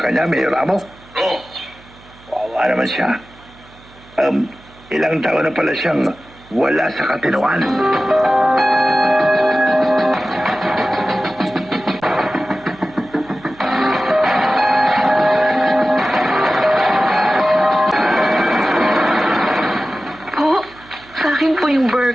kanya, Mayor Ramo? Oo. Wawa naman siya. Ilang taon na pala siyang wala sa katinoan. Po, sa akin po yung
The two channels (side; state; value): right; noise; hum, 25 dB below the sound